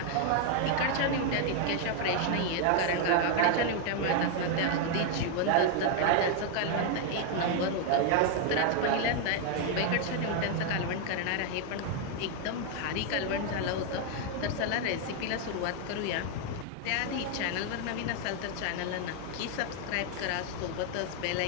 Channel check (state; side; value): different; both; correlation 0.00